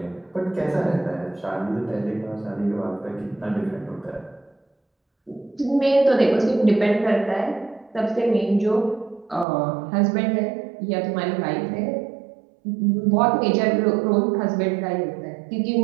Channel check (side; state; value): left; drops out; at 9.5 s